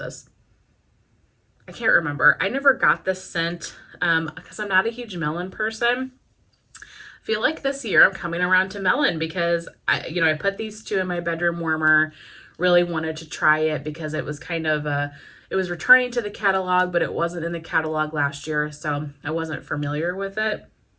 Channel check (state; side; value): identical; both; correlation 1.00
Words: I can't remember. I never got this scent because I'm not a huge melon person. I feel like this year I'm coming around to melon because I put these 2 in my bedroom warmer. Really wanted to try it because it was kind of it was returning to the catalog, but it wasn't in the catalog last year, so I wasn't familiar with it.